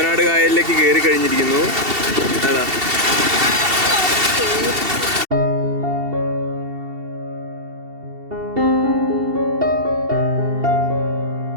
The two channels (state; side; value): late; left; 2.7 ms